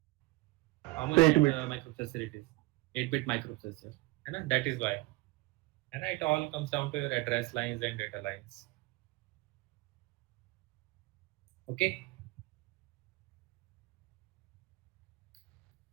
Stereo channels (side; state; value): left; quieter; 22.8 dB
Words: How much 8-bit. microprocessor it is? 8-bit microprocessor. And that is why. And it all comes down to your address lines and data lines. Okay.